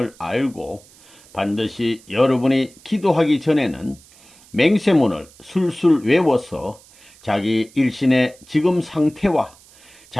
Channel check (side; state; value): right; noise; hiss, 26 dB below the sound